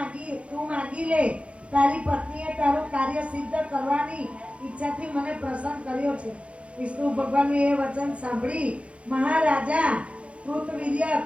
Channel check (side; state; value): left; late; 0.061 ms